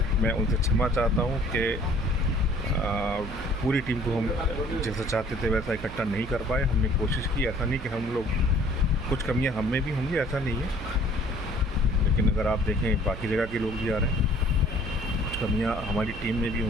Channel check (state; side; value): noise; right; hum, 13 dB below the sound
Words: मैं उनसे क्षमा चाहता हूँ कि पूरी टीम को हम जैसा चाहते थे वैसा इकट्ठा नहीं कर पाए। हमने कोशिश की, ऐसा नहीं कि हम लोग, कुछ कमियां हम में भी होंगी, ऐसा नहीं है, लेकिन अगर आप देखें बाकी जगह के लोग भी आ रहे हैं, कुछ कमियां हमारी टीम में भी